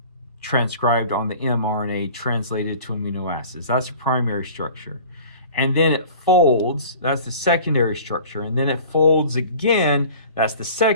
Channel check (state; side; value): inverted; both; correlation -0.44